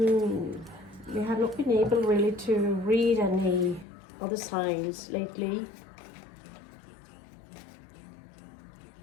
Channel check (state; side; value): drops out; right; at 3.9 s